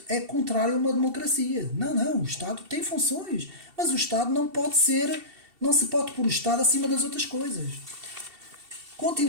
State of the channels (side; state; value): left; late; 2.7 ms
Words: é contrário a uma democracia. Não, o Estado tem funções, mas o Estado não se pode pôr o Estado acima das outras coisas.